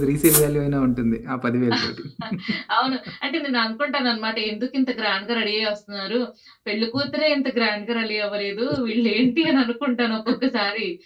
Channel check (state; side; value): identical; both; correlation 1.00